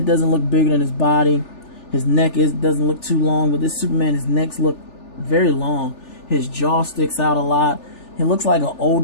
doesn't look bigger than his body. His neck doesn't look too long. But this Superman, his necks look very long. His jaw sticks out a lot. He looks like an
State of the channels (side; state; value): right; late; 3.4 ms